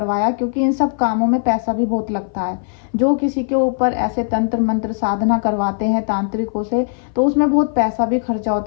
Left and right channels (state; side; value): silent; right; 59 dB below the other